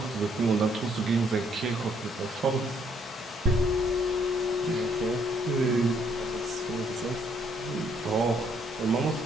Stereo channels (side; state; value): both; normal; correlation 0.68